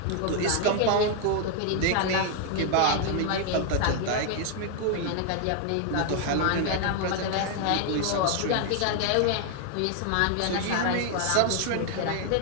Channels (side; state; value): both; different; correlation 0.00